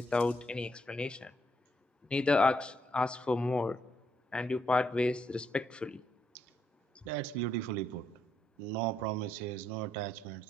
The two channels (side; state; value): both; normal; correlation 0.76